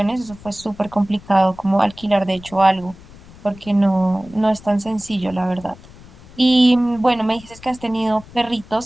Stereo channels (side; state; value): left; noise; rumble, 21 dB below the sound